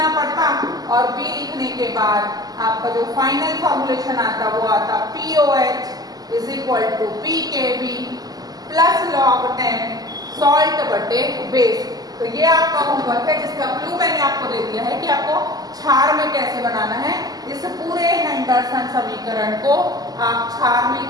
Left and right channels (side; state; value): left; late; 0.18 ms